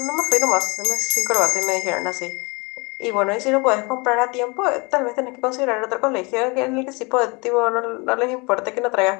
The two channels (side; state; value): right; quieter; 28.5 dB